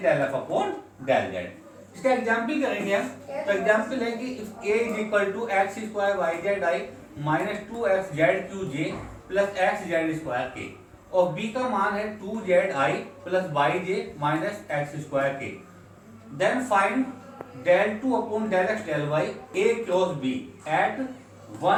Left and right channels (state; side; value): identical; both; correlation 1.00